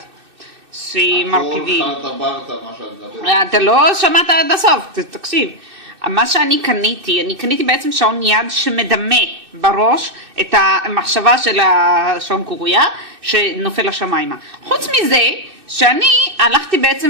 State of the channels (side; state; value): left; late; 2.6 ms